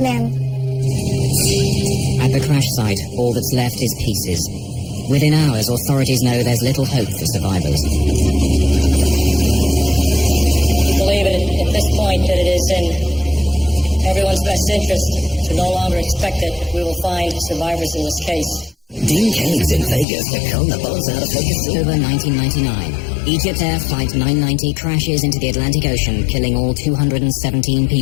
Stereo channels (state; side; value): drops out; right; at 20.1 s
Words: At the crash site, all that's left is pieces. Within hours, authorities know there's little hope for survivors. We believe at this point that it is in everyone's best interest to no longer expect that we will find survivors in this case. Dean Cain's in Vegas to con the buzz out of Vegas. October 1999, Egypt Air Flight 990 crashes into the Atlantic Ocean, killing all 217